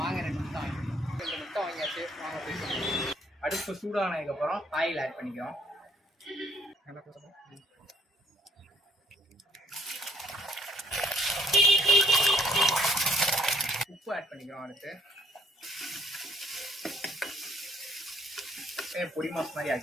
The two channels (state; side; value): normal; both; correlation 0.65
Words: வாங்க 2 முட்டை வாங்கியாச்சு. வாங்க போய் அடுப்பு சூடானதுக்கப்புறம் ஆயில் ஆட் பண்ணிக்கிறோம். உப்பு ஆட் பண்ணிக்கிறோம். அடுத்து பொடி மாஸ் மாதிரி